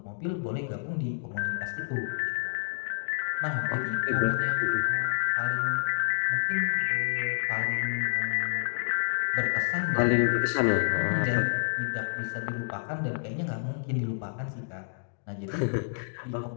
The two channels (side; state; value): right; silent; digital silence